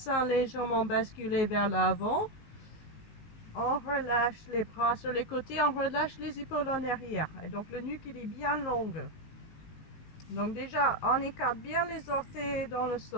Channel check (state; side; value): late; right; 19 ms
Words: légèrement basculé vers l'avant. On relâche les bras sur les côtés, on relâche les épaules en arrière. Et donc le nuque il est bien long. Donc déjà, on écarte bien les orteils dans le